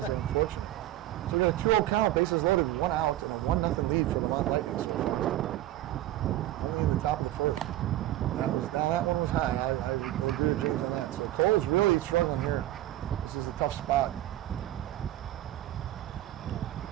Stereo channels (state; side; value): quieter; left; 14.2 dB